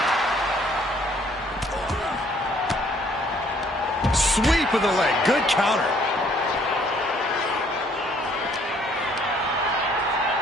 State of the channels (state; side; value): normal; both; correlation 0.62